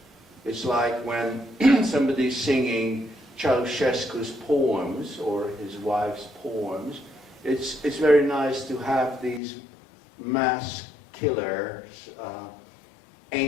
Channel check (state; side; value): drops out; right; at 9.4 s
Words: it's like when somebody's singing Ceausescu's poems or his wife's poems. It's very nice to have these mass killers,